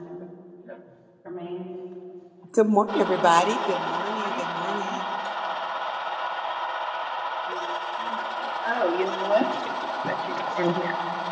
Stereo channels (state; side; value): identical; both; correlation 1.00